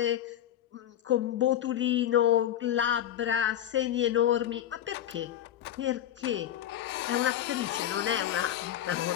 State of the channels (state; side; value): quieter; right; 11.4 dB